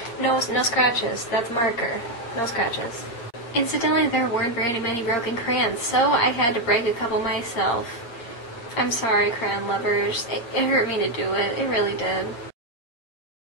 no scratches. That's marker. No scratches. Incidentally, there weren't very many broken crayons, so I had to break a couple myself. I'm sorry, crayon lovers. It hurt me to do it. It really did.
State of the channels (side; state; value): right; late; 8.6 ms